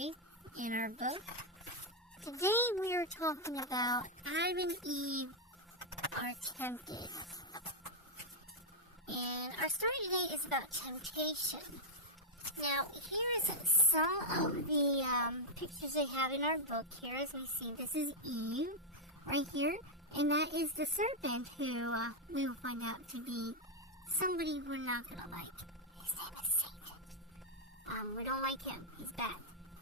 in our book. Today we are talking about Adam and Eve are tempted. And our story today is about temptation. Now, here's some of the pictures they have in our book here. As we see, this is Eve right here, and that is the serpent who we will find out to be somebody we're not going to like. His name is Satan. We don't like him. He's bad.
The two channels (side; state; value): both; normal; correlation -0.02